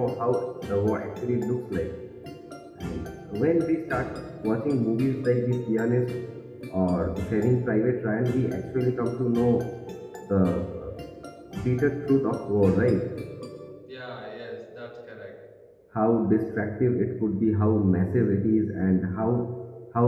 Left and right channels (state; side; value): identical; both; correlation 1.00